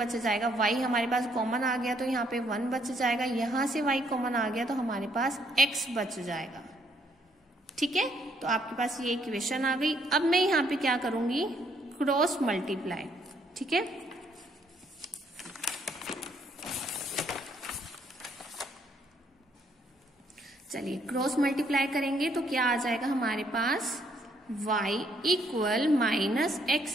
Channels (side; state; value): both; normal; correlation 0.69